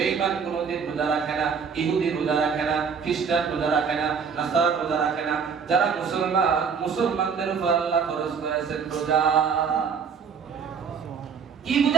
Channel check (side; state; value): left; quieter; 6.2 dB